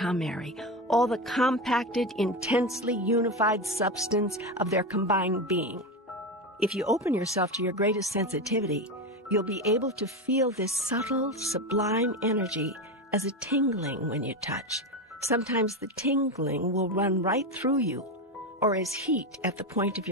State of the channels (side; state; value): both; normal; correlation 0.17